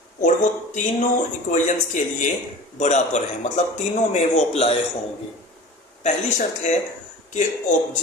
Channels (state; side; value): normal; both; correlation 0.38